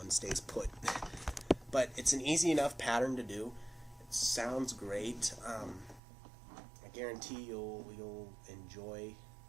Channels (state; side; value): drops out; left; at 6.0 s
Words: stays put. But it's an easy enough pattern to do. It sounds great. I guarantee you'll enjoy